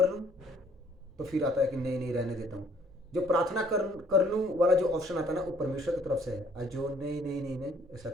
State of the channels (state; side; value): normal; both; correlation 0.62